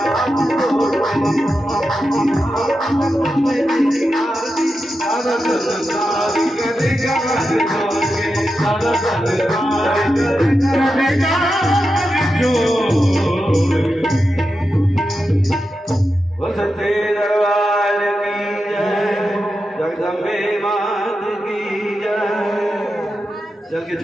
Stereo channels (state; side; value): normal; both; correlation 0.89